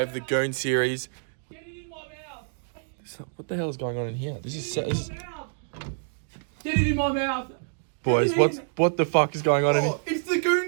the Goon series. What the hell is going on in here? This is set. Get it in my mouth! Boys, what the fuck is going on in here? It's the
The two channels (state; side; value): silent; left; digital silence